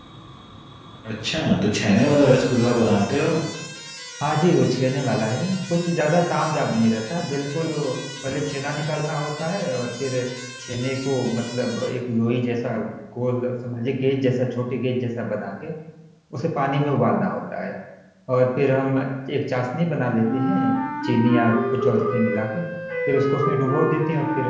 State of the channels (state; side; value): identical; both; correlation 1.00